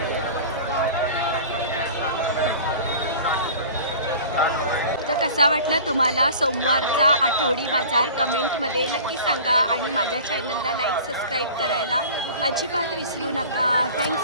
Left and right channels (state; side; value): inverted; both; correlation -0.41